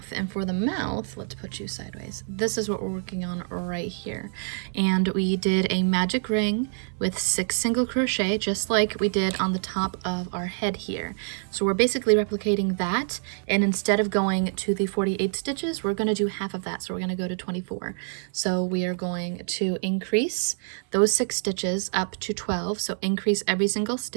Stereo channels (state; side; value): silent; left; 59 dB below the other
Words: and for the mouth, let's put you sideways. This is what we're working on right here. And we did a magic ring with 6 single crochet, just like we did on the top of our head here. So we're basically replicating that, and instead of going to the 48 stitches, we're gonna do half of that. So we're gonna go to 24. So we are going to increase those 6 stitches up to 12. So increase every single